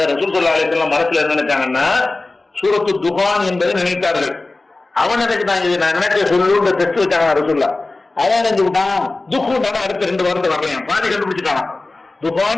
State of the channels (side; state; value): right; quieter; 3.2 dB